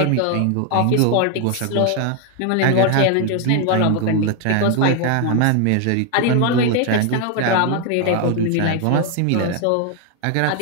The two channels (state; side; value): different; both; correlation 0.00